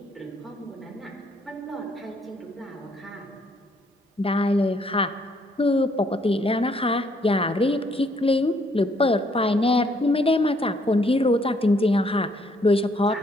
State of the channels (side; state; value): both; normal; correlation 0.68